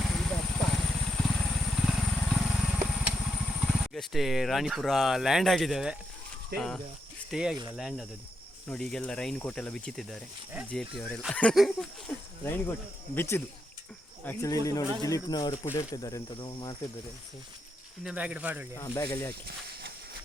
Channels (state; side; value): normal; both; correlation 0.82